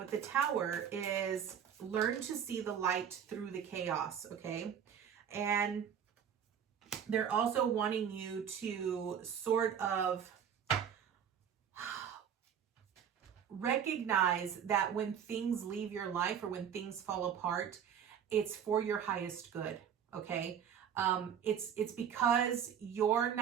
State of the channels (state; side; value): quieter; left; 8.4 dB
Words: the Tower is learn to see the light through the chaos, okay? And they're also wanting you to sort of recognize that when things leave your life or when things fall apart, it's for your highest good, okay? It's because you're